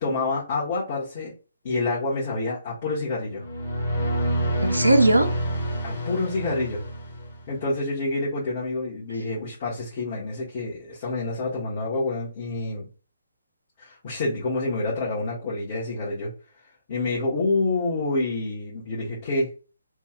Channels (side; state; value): both; inverted; correlation -0.73